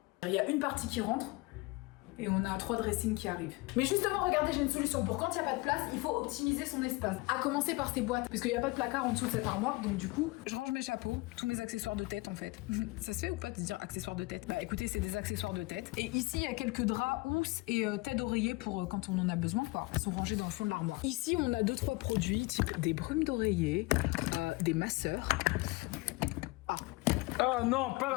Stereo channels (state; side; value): quieter; right; 23.6 dB